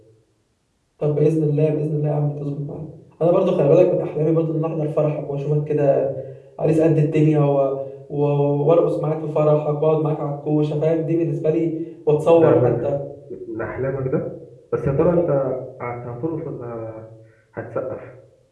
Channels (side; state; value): both; identical; correlation 1.00